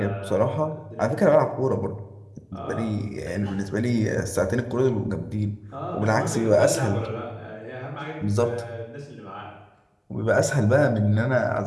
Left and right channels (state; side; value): identical; both; correlation 1.00